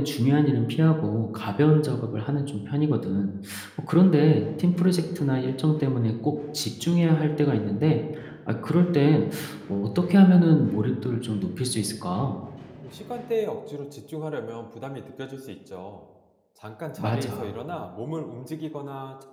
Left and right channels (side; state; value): both; identical; correlation 1.00